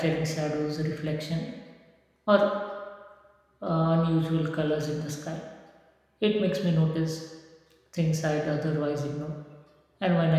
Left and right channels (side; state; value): both; identical; correlation 1.00